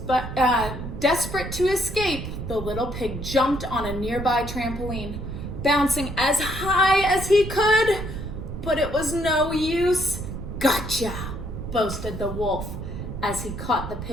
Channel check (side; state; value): right; noise; rumble, 7 dB below the sound